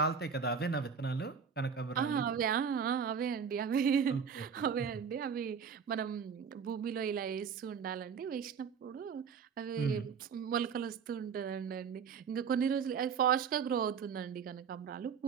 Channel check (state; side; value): quieter; left; 6.6 dB